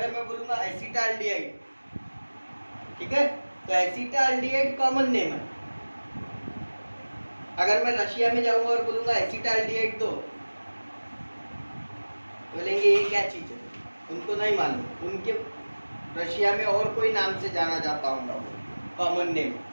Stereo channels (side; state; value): both; inverted; correlation -1.00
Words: मैं बोलूंगा एसिटाल्डिहाइड, ठीक है, तो एसिटाल्डिहाइड कॉमन नेम है। अगर मैं रशिया में जाऊंगा और बोलूंगा एसिटाल्डिहाइड तो बोलेंगे ये क्या चीज है, उनको नहीं मालूम, उनके रशिया में और कोई नाम से जाना जाता होगा, कॉमन नेम,